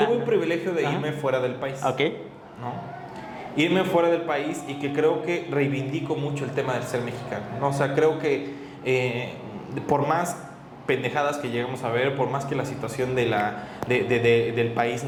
tuve un privilegio de irme fuera del país. Ok. ¿No? Irme fuera del país, y que creo que reivindico mucho el tema del ser mexicano, ¿no? O sea, creo que por más pendejadas que llegamos a ver, por más que la situación del país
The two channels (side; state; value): both; identical; correlation 1.00